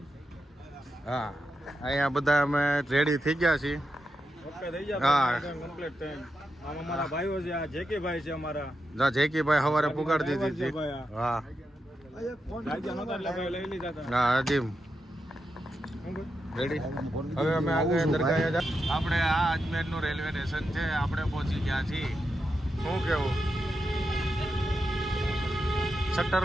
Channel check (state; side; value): normal; both; correlation 0.87